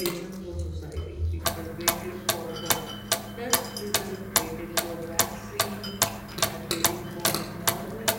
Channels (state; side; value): identical; both; correlation 1.00